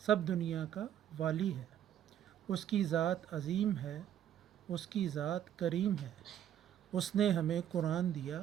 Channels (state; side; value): quieter; left; 10.4 dB